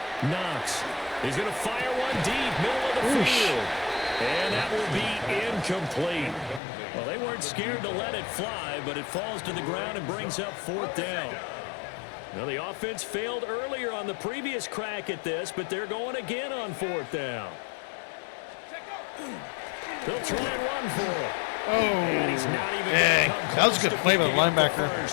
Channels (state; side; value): drops out; right; at 6.6 s